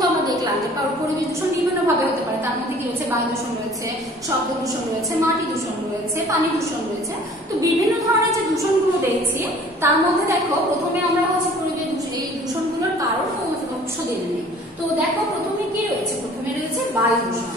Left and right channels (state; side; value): normal; both; correlation 0.51